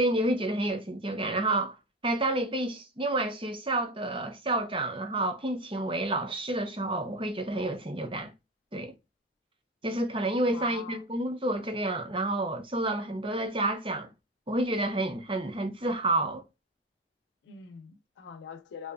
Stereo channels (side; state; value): both; normal; correlation 0.23